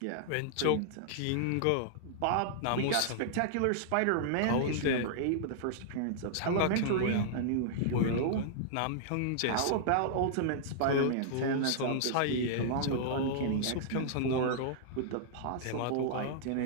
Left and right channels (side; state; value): both; different; correlation -0.01